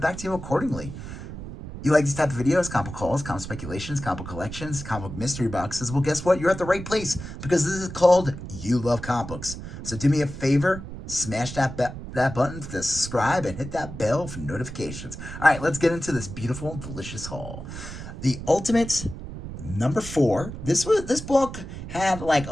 back to you accordingly. You like these type of videos, comic hauls, comic speculations, comic collections, comic mystery boxes? Well, guess what? You're at the right place because this is called You Love Comics. So do me a favor, smash that button to subscribe and hit that bell for notifications. All right, let's get into this beautiful, delicious haul. The Ultimate number 4. This book had like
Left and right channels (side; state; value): right; noise; rumble, 10 dB below the sound